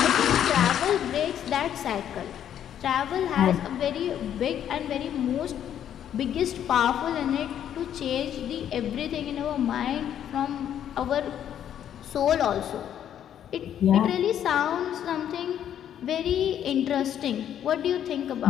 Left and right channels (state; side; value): quieter; right; 10.0 dB